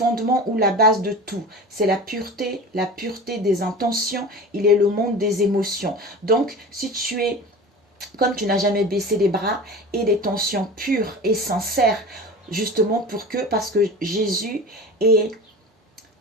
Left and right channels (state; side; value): normal; both; correlation 0.34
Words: ou la base de tout, c'est la pureté des intentions. Il est le monde des émotions. Donc, si tu es, comme tu n'as jamais baissé les bras, et des tensions pures et sincères, justement parce que Jésus est,